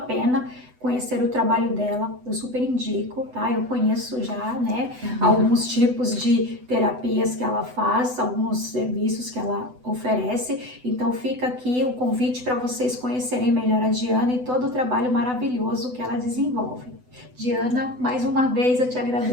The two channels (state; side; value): late; left; 8.0 ms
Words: conhecer o trabalho dela. Eu super indico, tá? Eu conheço já, né, alguns tipos de terapias que ela faz, alguns serviços que ela oferece. Então fica aqui o convite para vocês conhecerem melhor a Diana e todo o trabalho maravilhoso que ela desenvolve. Diana, mais uma vez eu te